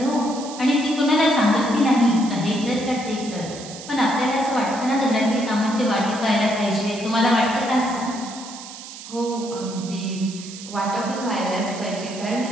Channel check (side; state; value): right; noise; hiss, 13 dB below the sound